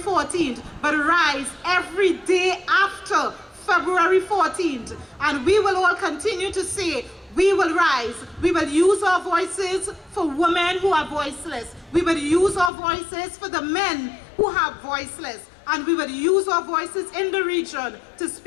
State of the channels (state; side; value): drops out; right; at 12.7 s